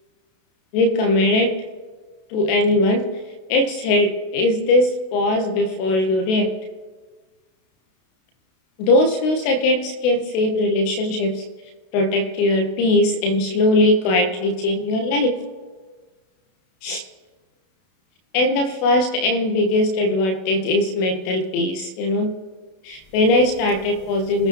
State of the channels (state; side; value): late; right; 32 ms